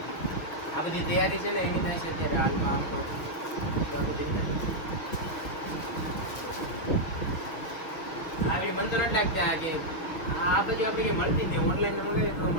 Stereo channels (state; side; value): late; right; 6.5 ms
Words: આ બધી તૈયારી છે ને એની થાય છે અત્યારે હાલમાં આમ કહું છું. આવી મન તો નથી લાગતા કે આ બધું આપણે મળતી જ ઓનલાઈન મંગાવીએ તો